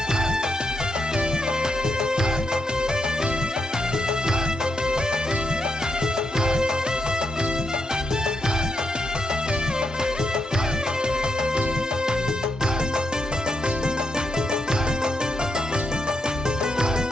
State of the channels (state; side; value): normal; both; correlation 0.81